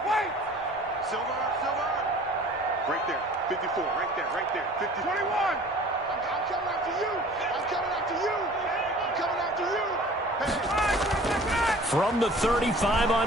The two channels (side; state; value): both; normal; correlation 0.47